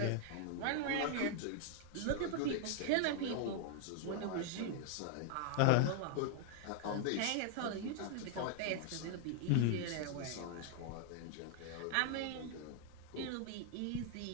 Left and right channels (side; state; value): both; different; correlation 0.00